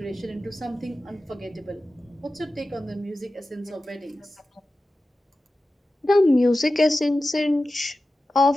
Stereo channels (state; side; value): normal; both; correlation 0.94